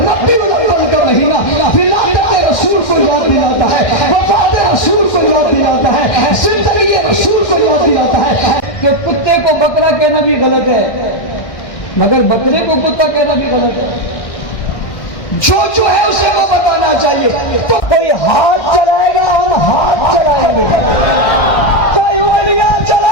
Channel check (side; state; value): right; late; 1.6 ms